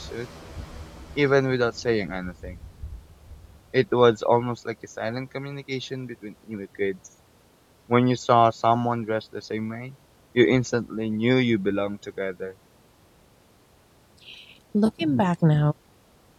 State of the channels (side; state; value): both; identical; correlation 1.00